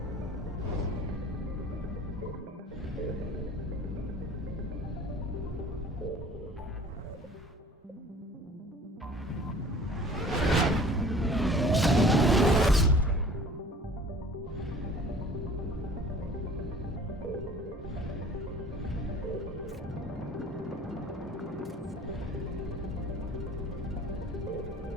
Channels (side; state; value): both; normal; correlation 0.47